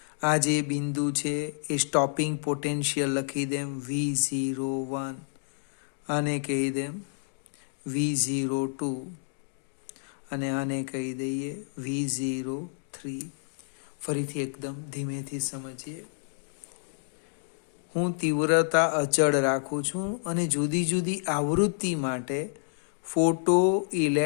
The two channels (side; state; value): right; silent; digital silence